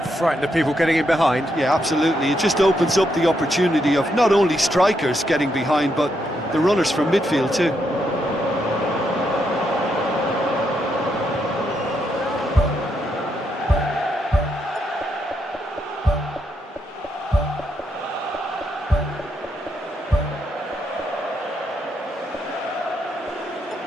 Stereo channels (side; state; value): both; normal; correlation 0.79